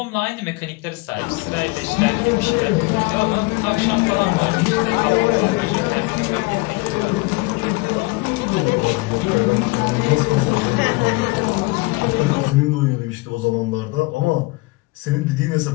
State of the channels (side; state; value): right; quieter; 24.9 dB